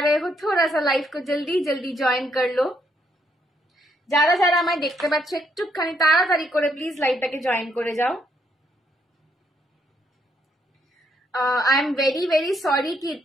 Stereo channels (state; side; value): normal; both; correlation 0.74